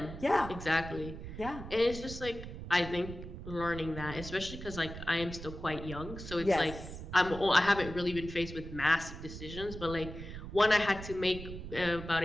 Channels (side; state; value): right; noise; rumble, 10 dB below the sound